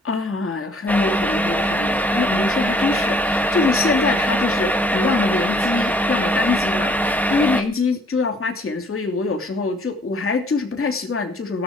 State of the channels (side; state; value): both; normal; correlation 0.60